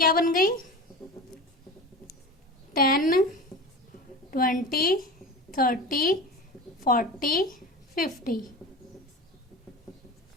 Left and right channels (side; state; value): both; normal; correlation 0.32